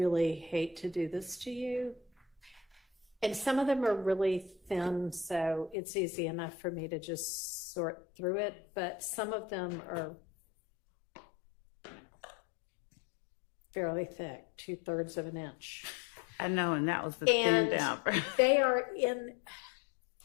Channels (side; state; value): right; drops out; at 5.8 s